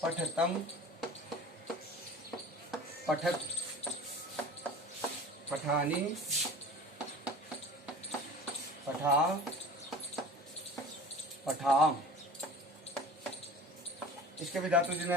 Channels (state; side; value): normal; both; correlation 0.40